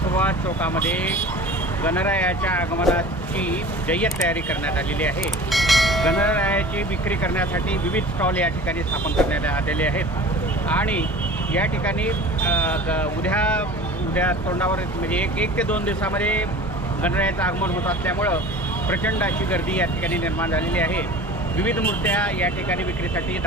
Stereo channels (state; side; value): normal; both; correlation 0.40